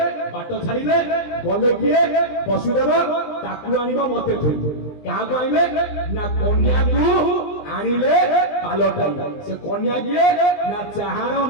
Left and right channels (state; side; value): late; right; 20 ms